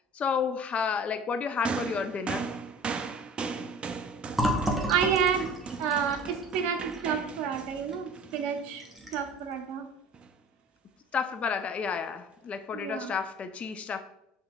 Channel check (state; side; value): normal; both; correlation 0.44